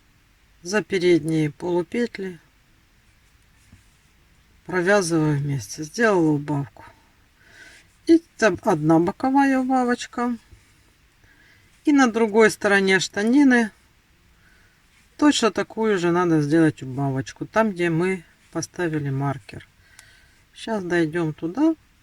за передние полупетли провязываю вместе. Сделала убавку. И там одна боковая убавочка. И на другой стороне штанины точно такую же надо сделать убавочку. Там, где мы поставили маркер. Сейчас дойдем туда.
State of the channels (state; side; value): identical; both; correlation 1.00